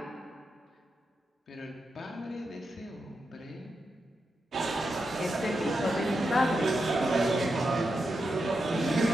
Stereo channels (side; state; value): both; normal; correlation 0.87